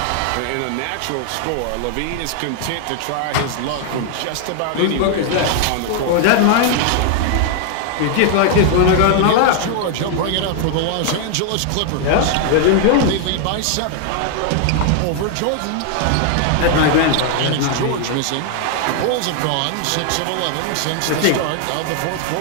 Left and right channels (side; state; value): both; different; correlation 0.00